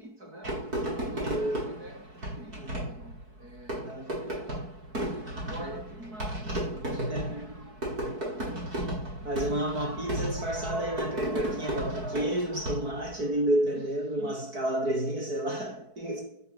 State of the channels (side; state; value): left; late; 4.6 ms